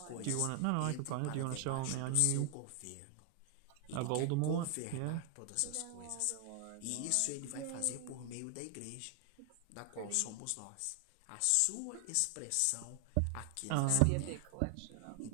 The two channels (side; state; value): both; different; correlation 0.00